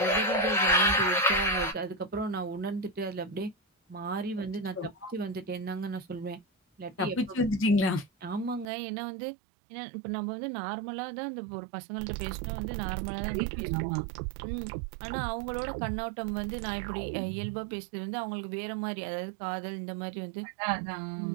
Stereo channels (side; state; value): left; drops out; at 8.7 s